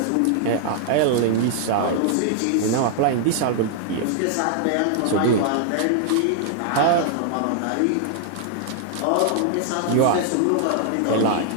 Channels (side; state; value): both; different; correlation 0.00